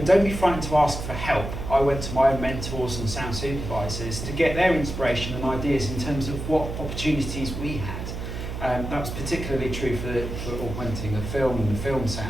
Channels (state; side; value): noise; right; hum, 6 dB below the sound